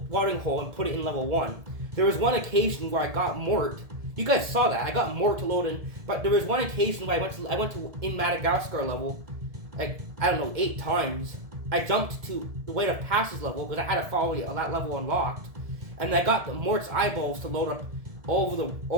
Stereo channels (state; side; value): late; left; 1.7 ms